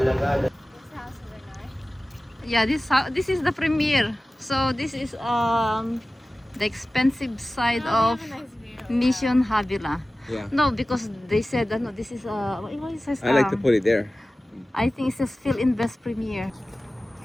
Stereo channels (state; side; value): normal; both; correlation 0.96